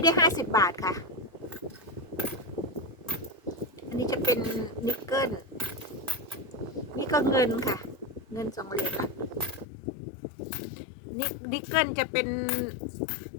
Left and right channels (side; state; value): right; drops out; at 9.7 s